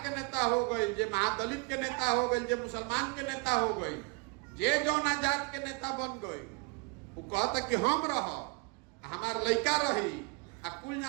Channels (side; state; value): left; quieter; 31.0 dB